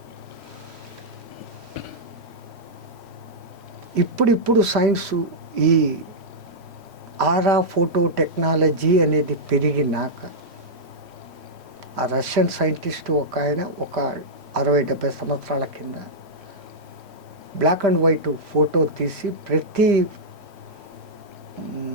ఇప్పుడిప్పుడు సైన్సు ఈ ఆరా ఫోటో టెక్నాలజీ అనేది పెరిగినాక ఆ రష్యన్ సైంటిస్ట్ ఒక ఆయన ఒక 60-70 సంవత్సరాల కింద బ్లాక్ అండ్ వైట్ ఫోటో తీసి ప్రతి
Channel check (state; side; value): late; left; 3.1 ms